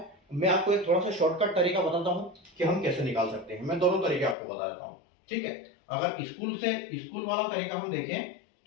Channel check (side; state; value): right; drops out; at 4.4 s